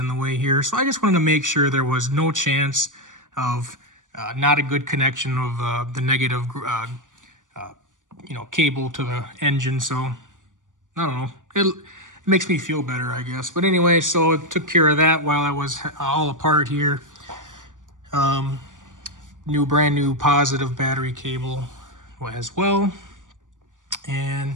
the way here. So I just wanted to make sure there was no chance of not a good connection of the negative, cable to the engine. So I don't know. It makes me feel better, I guess. But anyway, so it took care of that while I was all apart here. Brand new positive battery cable as well.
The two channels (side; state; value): left; late; 0.88 ms